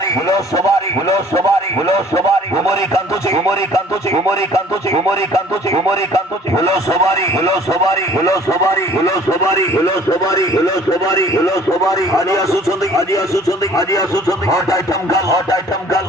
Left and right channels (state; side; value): normal; both; correlation 0.53